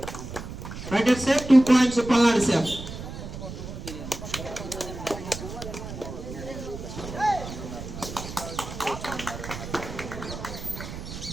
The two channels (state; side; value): noise; right; rumble, 9 dB below the sound